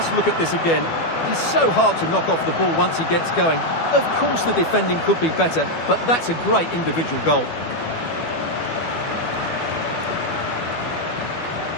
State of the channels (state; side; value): late; right; 12 ms